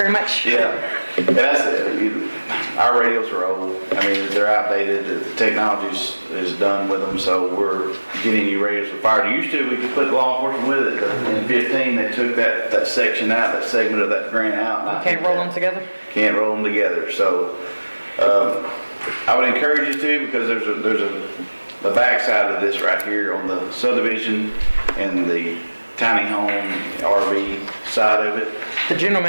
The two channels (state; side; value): inverted; both; correlation -1.00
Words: much. Yeah, and that's our radios are old. I mean, they're outdated. The technology is done with them, so we're getting new radios for fire. Used to, we could put law enforcement with it. In 15, they took that section out, that segment of that grant out. and I Can't think roll that- them together? Can't roll them together. So I would encourage you to, because there's the backside of this right here on the subdivision and the tiny home RV side of it. The